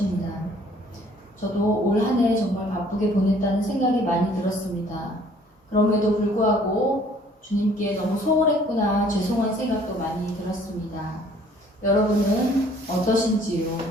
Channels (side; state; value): both; normal; correlation 0.57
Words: 저도 올 한 해 정말 바쁘게 보냈다는 생각이 많이 들었습니다. 그럼에도 불구하고 주님께 너무 소홀했구나 죄송한 생각도 많이 들었습니다. 여러분은 어떠신지요?